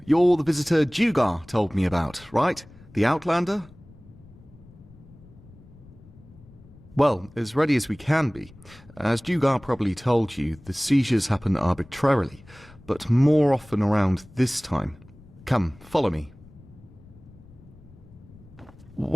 You're the visitor Dugar told me about, right? The Outlander? Well, as ready as we can be. As Dugar probably told you, the seizures happen arbitrarily, but more often around this time. Come, follow me.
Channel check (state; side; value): noise; left; rumble, 23 dB below the sound